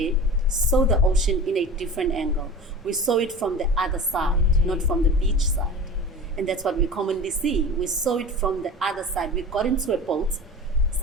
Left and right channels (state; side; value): normal; both; correlation 0.34